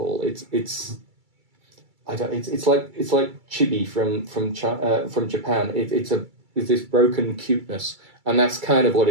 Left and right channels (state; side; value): late; left; 2.3 ms